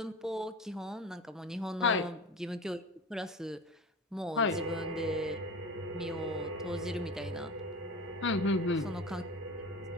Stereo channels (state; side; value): normal; both; correlation 0.32